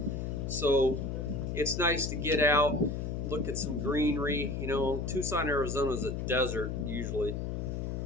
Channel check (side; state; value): left; noise; hum, 3 dB below the sound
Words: So it's nice to get out, look at some greenery. You know, Tucson, Arizona is a desert usually.